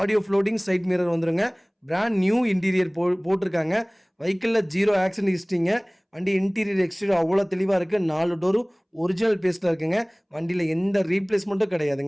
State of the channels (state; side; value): identical; both; correlation 1.00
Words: floating, side mirror வந்துடுங்க. பிராண்ட் நியூ இன்டீரியர் போட்டிருக்காங்க. வெஹிக்கிளில் 0 ஆக்சிடென்ட் ஹிஸ்ட்ரிங்க. வண்டி இன்டீரியர் எக்ஸ்டீரியர் அவ்வளோ தெளிவாக இருக்குது. 4 டோரும் ஒரிஜினல் பேஸ்ட்டில் இருக்குங்க. வண்டியில் எந்த ரீப்ளேஸ்மெண்ட்டும்